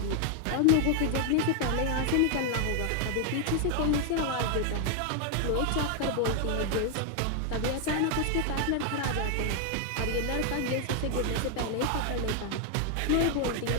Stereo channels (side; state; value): both; different; correlation 0.00